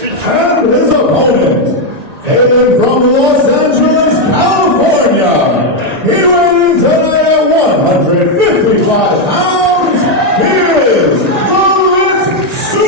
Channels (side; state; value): left; late; 1.9 ms